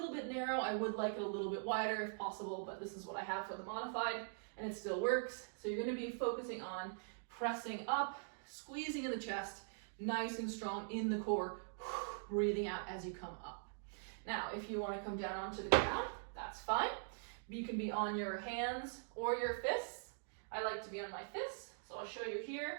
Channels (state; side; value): silent; left; digital silence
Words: bit narrow. I would like it a little bit wider if possible, but this is what I have for the modified, and it still works. So you're gonna be focusing on pressing up, squeezing in the chest, nice and strong in the core, breathing out as you come up. Now, if you wanna come down onto the ground, that's fine. You can be on your hands or your fists. I like to be on my fists, so I'll show you